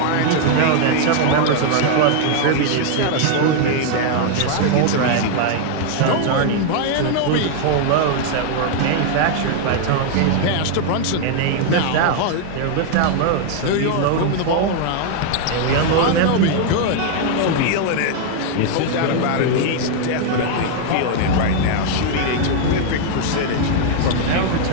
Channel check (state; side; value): different; both; correlation 0.00